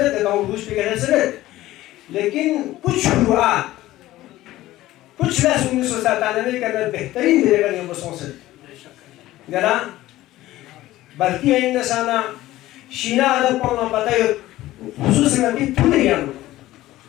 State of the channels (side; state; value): right; quieter; 15.9 dB